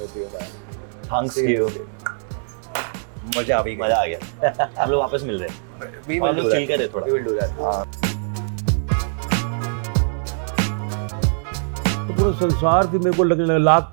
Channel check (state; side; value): silent; left; 64 dB below the other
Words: you man. Thanks you, मजा आ गई. मजा आ गया। हम लोग वापस मिल रहे हैं, We हम will लोग do चिल that. करें थोड़ा। We will do that. हाँ. तो पूरा संसार भी मेरे को लगने लगा, लाख